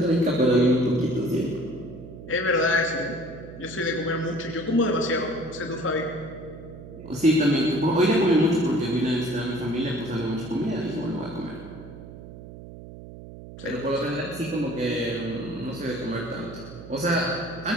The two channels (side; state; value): right; noise; hum, 14 dB below the sound